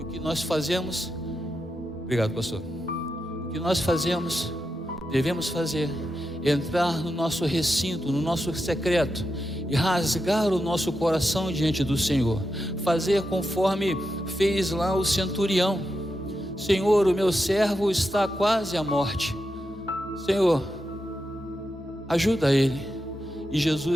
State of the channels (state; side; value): normal; both; correlation 0.87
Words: o que nós fazemos? Obrigado, pastor. O que nós fazemos, devemos fazer, entrar no nosso recinto, no nosso secreto, e rasgar o nosso coração diante do Senhor, fazer conforme fez lá o centurião: Senhor, o meu servo está quase à morte, Senhor, ajuda ele. E